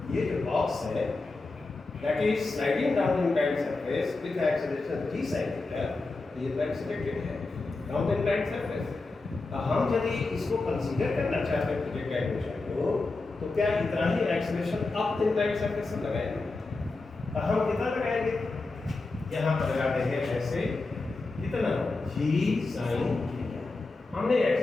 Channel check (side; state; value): right; quieter; 3.5 dB